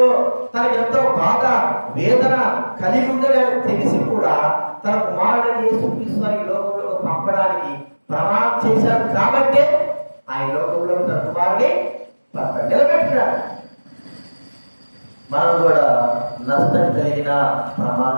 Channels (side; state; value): both; inverted; correlation -1.00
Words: తనకు ఎంతో బాధ వేదన కలిగి ఉందని తెలిసి కూడా తన కుమారుడిని యేసుక్రీస్తు ఈ లోకంలో పంపడానికి ప్రమాణం చేశాడు. కాబట్టి ఆయన లోకంలో తన కుమారుడిని నిలబెట్టినాడు. మనం కూడా నష్టం కలిగిన